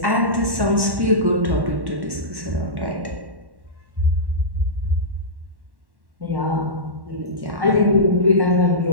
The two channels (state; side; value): late; left; 1.1 ms